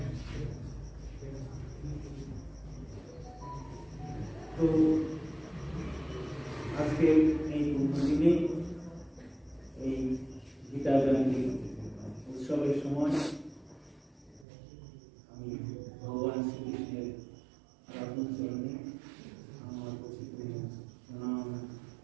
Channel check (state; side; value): drops out; left; at 14.5 s